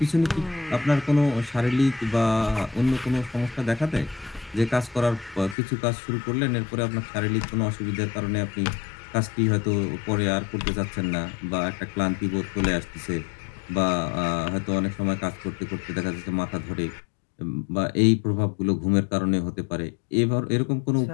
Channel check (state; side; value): drops out; right; at 5.6 s